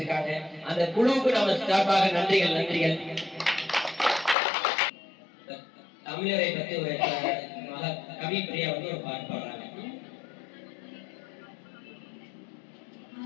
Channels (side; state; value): right; drops out; at 4.4 s